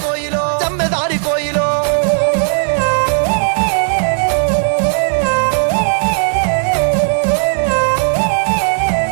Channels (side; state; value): left; silent; digital silence